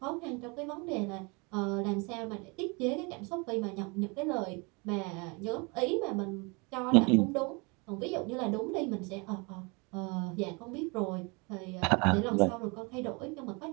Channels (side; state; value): left; quieter; 29.9 dB